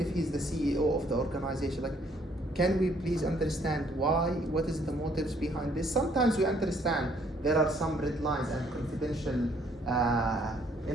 he's the CEO of the organization, like, can we please understand why? What is the motives behind this? Sometimes we understand there are some red lines and confidential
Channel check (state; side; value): normal; both; correlation 0.65